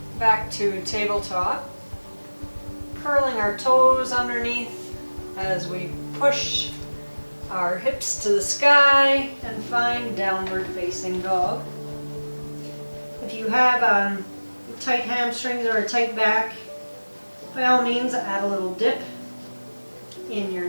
Back to tabletop. Curling our toes underneath as we push our hips to the sky and find downward facing dog. If you have tight hamstrings or a tight back, by all means, add a little dip in your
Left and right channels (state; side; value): inverted; both; correlation -1.00